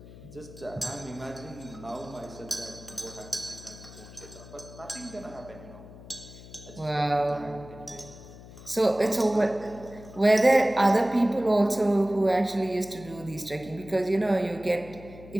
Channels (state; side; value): noise; left; hum, 17 dB below the sound